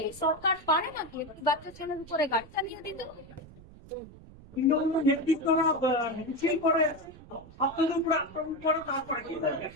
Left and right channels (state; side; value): noise; right; rumble, 19 dB below the sound